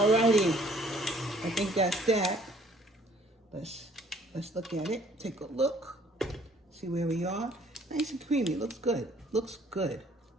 I think that's that. Let's look at it. Take a look. See where we are. Nice and creamy. Looks good. Looks good.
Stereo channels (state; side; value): normal; both; correlation 0.59